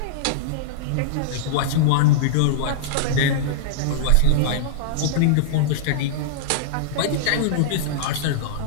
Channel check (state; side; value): different; both; correlation -0.02